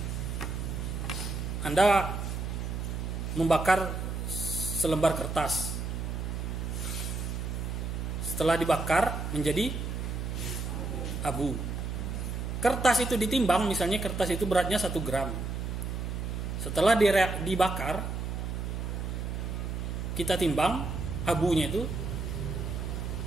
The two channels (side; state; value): right; noise; hum, 3 dB below the sound